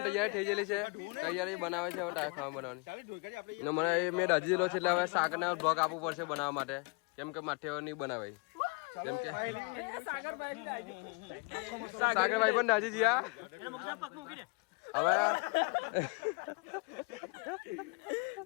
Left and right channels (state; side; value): quieter; right; 31.2 dB